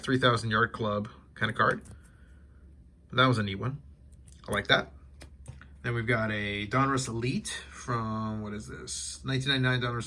Yard Club kind of card. That was a neat one. I like that. Then we've got a Donruss Elite from, what is this? 1999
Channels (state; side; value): identical; both; correlation 1.00